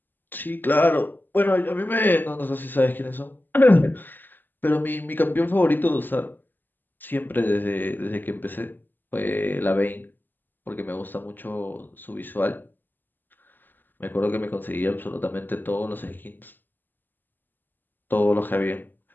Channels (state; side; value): late; right; 0.090 ms